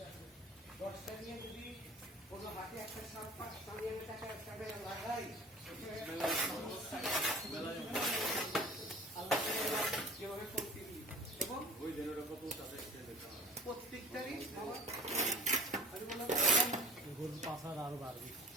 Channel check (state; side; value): normal; both; correlation 0.43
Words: আছে 10টা নিয়ে যদি কোনো হাতে একটা সামনে টাকা লাগাই আল্লাহ কিভাবে করতে এবং ওই জেনারেটর কত আছে প্রত্যেকটারই গরুর পাশার আরো বাড়বে